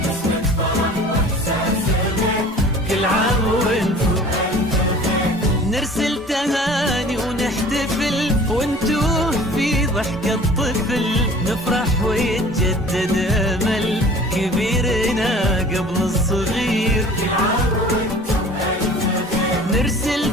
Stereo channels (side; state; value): both; normal; correlation 0.46